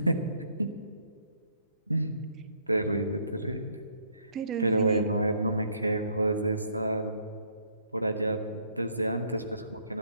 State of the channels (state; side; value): inverted; both; correlation -0.67